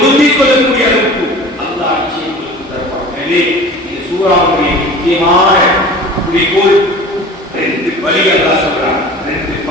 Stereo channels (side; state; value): both; normal; correlation 0.40